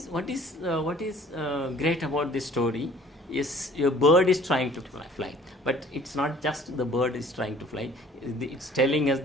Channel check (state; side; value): normal; both; correlation 0.52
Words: great about this story. Yes, your bird is trying to fly, but it's not just the bird is trying to fly. It's telling us